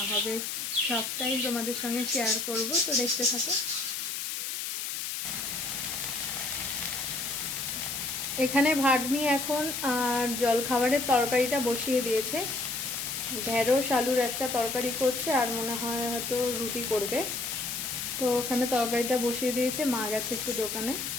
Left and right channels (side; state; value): left; noise; hiss, 4 dB below the sound